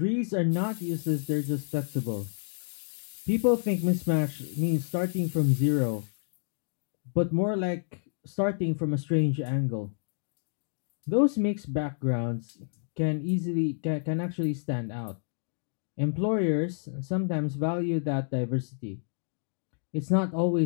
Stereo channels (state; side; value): silent; right; digital silence